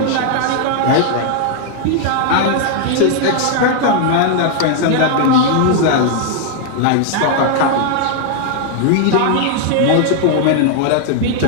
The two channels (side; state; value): both; different; correlation 0.00